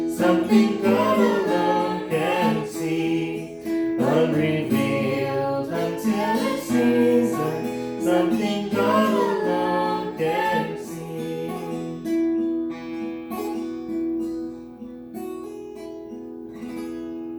something God alone can see, unrevealed until it's season, something God alone can see.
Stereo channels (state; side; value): identical; both; correlation 1.00